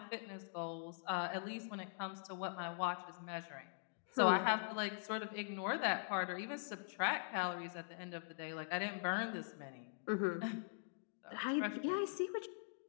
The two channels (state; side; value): silent; right; digital silence